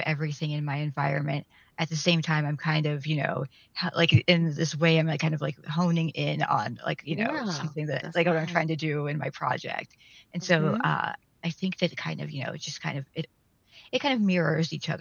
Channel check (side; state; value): both; identical; correlation 1.00